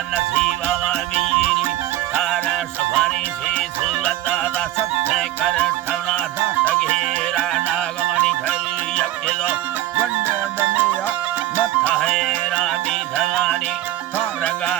नसीबा वीरी तारा सफारी से सुलता दा सत्य कर ठवना दा तगेरा नागमणि घर यज्ञो वंदे दमेया मथा है रामी धगानी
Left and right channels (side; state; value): left; quieter; 14.5 dB